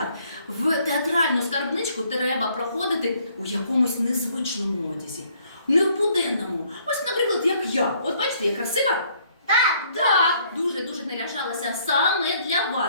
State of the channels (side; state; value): both; inverted; correlation -0.64